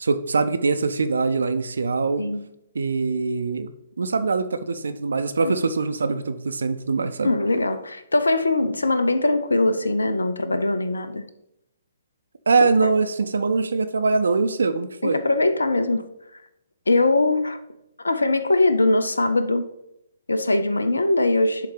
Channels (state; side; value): inverted; both; correlation -0.85